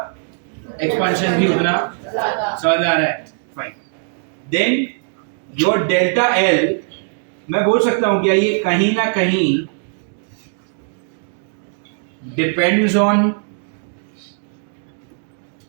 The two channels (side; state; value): left; silent; 60 dB below the other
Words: एक्सपांशन भी उतना समझ आ रहा है? Fine. Then your delta L, मैं बोल सकता हूं क्या ये कहीं ना कहीं depends on